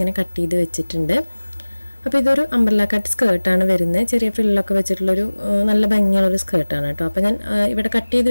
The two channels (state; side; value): inverted; both; correlation -1.00